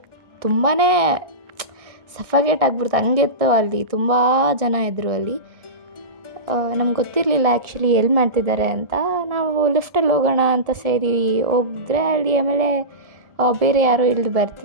ತುಂಬಾ ಸಫಗೇಟ್ ಆಗಿಬಿಡ್ತು. ಹಂಗಿತ್ತು ಅಲ್ಲಿ. ತುಂಬ ಜನ ಇದ್ದರು ಅಲ್ಲಿ. ನಮ್ಗೆ ಗೊತ್ತಿರಲಿಲ್ಲ ಆ್ಯಕ್ಚುಲಿ ಎಲ್ಲಿ ಮಾಡ್ತಿದ್ದಾರೆ ಅಂತ. ನಾವು ಲಿಫ್ಟಲ್ಲಿ ಹೋಗೋಣ ಅಂತ ಸೇರಿ ಹೋಗಿದ್ರೆ ಅಲ್ಲಿ ಆಮೇಲೆ ಬೇರೆ ಯಾರೋ ಇಳಿದು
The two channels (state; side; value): late; left; 1.6 ms